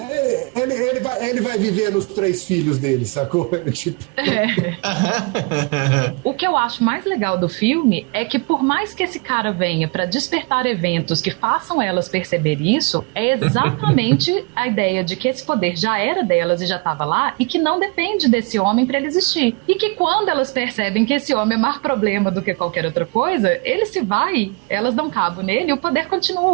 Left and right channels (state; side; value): quieter; left; 31.1 dB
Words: Ele vai viver nos 3 filhos dele, sacou? Tipo... O que eu acho mais legal do filme é que por mais que esse cara venha pra despertar eventos que façam elas perceber isso, é exatamente a ideia de que esse poder já era delas e já estava lá e que não depende desse homem pra ele existir. E que quando elas percebem que esse homem é mais problema do que qualquer outra coisa, ele se vai, elas dão cabo nele e o poder